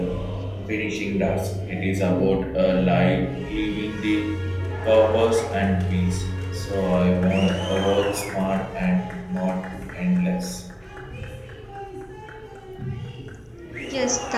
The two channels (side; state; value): both; identical; correlation 1.00